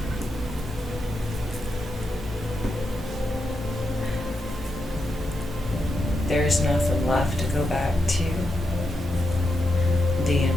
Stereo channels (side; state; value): both; normal; correlation 0.86